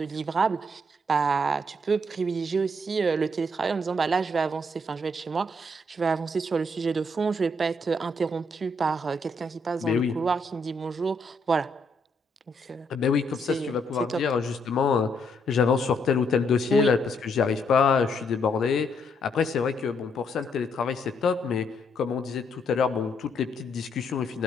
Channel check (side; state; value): both; normal; correlation 0.73